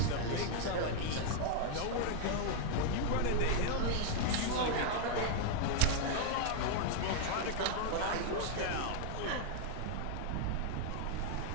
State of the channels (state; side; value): different; both; correlation -0.01